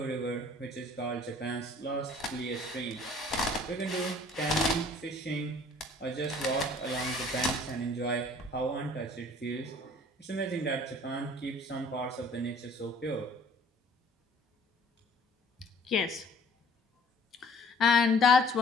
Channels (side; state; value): both; normal; correlation 0.54